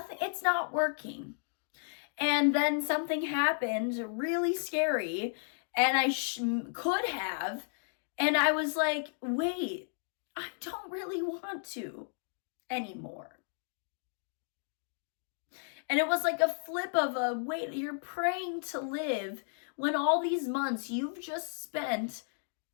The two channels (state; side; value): silent; right; digital silence